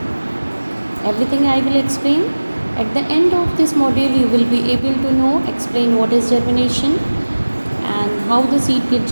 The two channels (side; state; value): both; inverted; correlation -1.00